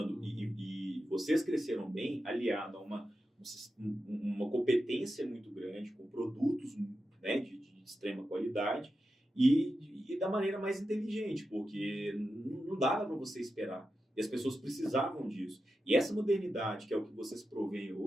e vocês cresceram bem, aliado a uma competência muito grande, com produtos, né, de extrema qualidade e da maneira mais inteligente, porque não dava para você esperar. E as pessoas precisavam disso. E essa modernidade, que é o que vocês provêm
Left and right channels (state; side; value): normal; both; correlation 0.90